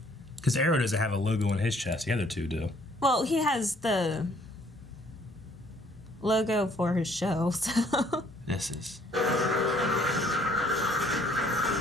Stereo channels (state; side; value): normal; both; correlation 0.62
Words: Because Arrow doesn't have a logo on his chest. The other two do. Well, he has the logo for his show. So. This is.